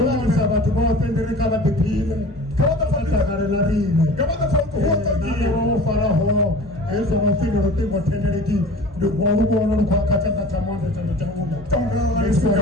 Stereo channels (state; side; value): normal; both; correlation 0.41